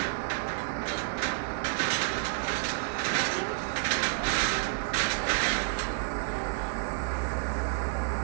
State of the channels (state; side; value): silent; left; digital silence